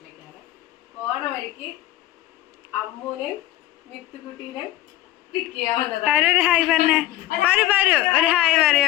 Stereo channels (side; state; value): right; quieter; 15.5 dB